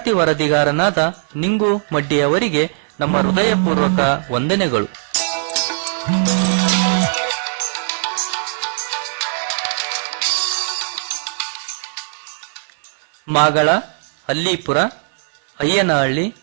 ವರದಿಗಾರನಾದ ನಿಂಗು ಮಡ್ಡಿಯವರಿಗೆ ನಮ್ಮ ಹೃದಯಪೂರ್ವಕ ವಂದನೆಗಳು. ಮಾಗಳ, ಅಲ್ಲಿಪುರ, ಅಯ್ಯನಹಳ್ಳಿ,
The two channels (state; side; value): silent; left; digital silence